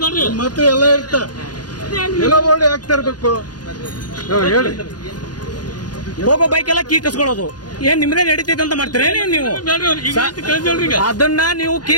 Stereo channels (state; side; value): late; right; 0.69 ms